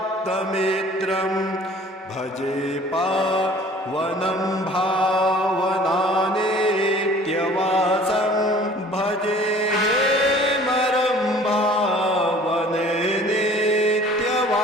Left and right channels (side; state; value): both; normal; correlation 0.50